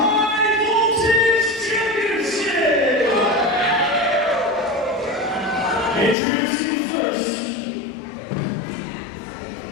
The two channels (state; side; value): drops out; right; at 6.2 s